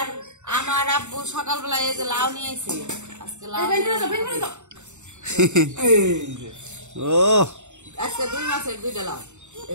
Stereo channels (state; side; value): late; left; 0.84 ms